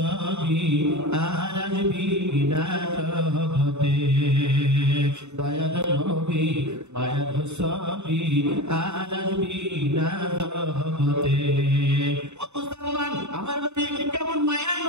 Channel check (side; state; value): left; late; 0.82 ms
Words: আরবি না জগতে দয়ার নবী মায়ার নবী আরবি না জগতে। ও মুসলমান আমার নবী কেমন মায়ার